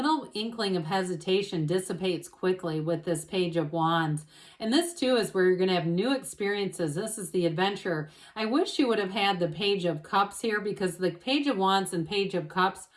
inkling of hesitation dissipates quickly with this Page of Wands. And this, too, is where you're going to have new experiences. This is the adventure. I wish you would have had the Page of Cups here because the Page of Wands and Page of Cups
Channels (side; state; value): both; identical; correlation 1.00